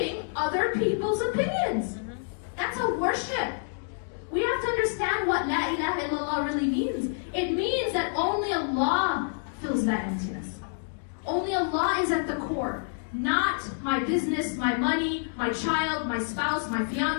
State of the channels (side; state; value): right; silent; digital silence